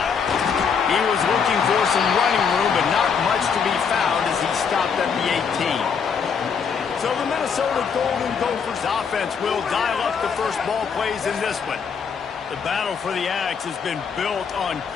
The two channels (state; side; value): quieter; right; 6.3 dB